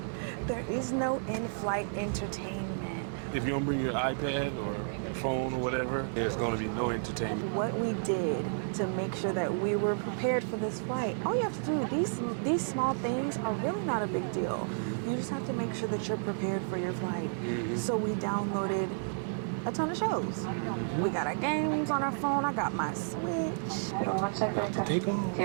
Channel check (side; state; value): left; silent; digital silence